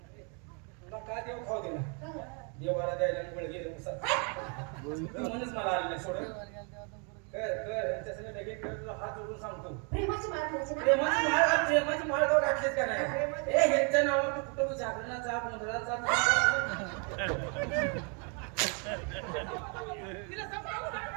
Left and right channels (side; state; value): left; quieter; 37.0 dB